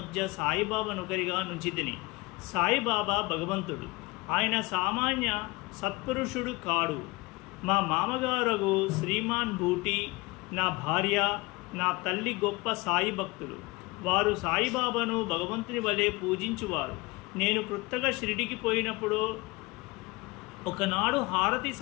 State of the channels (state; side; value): quieter; right; 24.0 dB